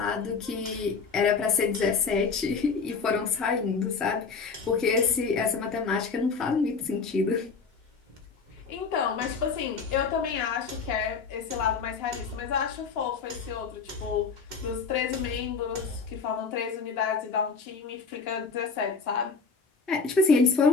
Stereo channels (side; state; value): right; quieter; 5.1 dB